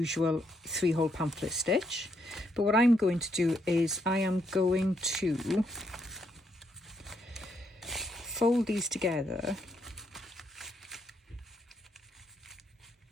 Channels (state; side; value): normal; both; correlation 0.76